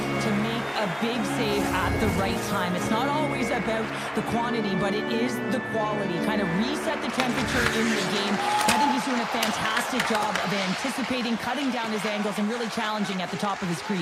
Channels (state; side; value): identical; both; correlation 1.00